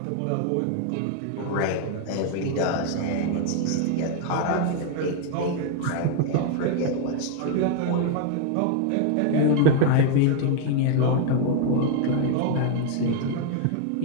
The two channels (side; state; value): both; different; correlation 0.00